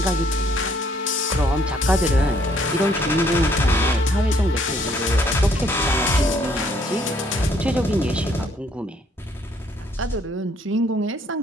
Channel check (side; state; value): both; normal; correlation 0.65